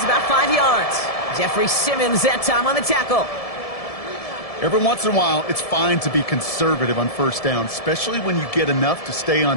about 5 yards. Jeffrey Simmons that time on the tackle. Every once in a while, it's fine to be conservative on 1st down, especially when you get enough to stay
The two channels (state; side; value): late; right; 1.7 ms